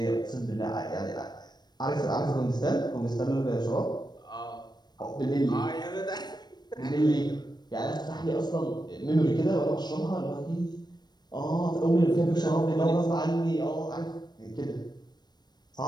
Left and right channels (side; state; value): right; late; 0.20 ms